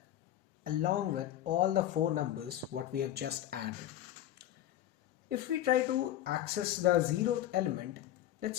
along with all the 4 numbers what we have just added. If we try to access the 0th element, let's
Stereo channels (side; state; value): right; quieter; 12.4 dB